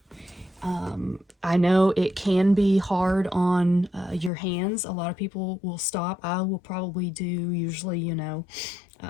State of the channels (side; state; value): right; drops out; at 4.3 s